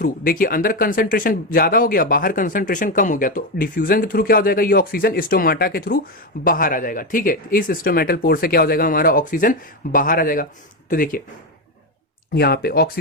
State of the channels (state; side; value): normal; both; correlation 0.11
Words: देखिए अंदर कंसंट्रेशन ज्यादा हो गया, बाहर कंसंट्रेशन कम हो गया, तो डिफ्यूजन के थ्रू क्या हो जाएगा? ये ऑक्सीजन स्टोमाटा के थ्रू बाहर आ जाएगा, ठीक है। इस स्टोमेटल पोर से क्या हो जाएगा? हमारा ऑक्सीजन बाहर आ जाएगा। तो देखिए यहाँ पे